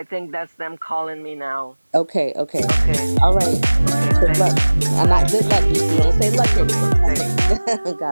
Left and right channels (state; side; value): inverted; both; correlation -1.00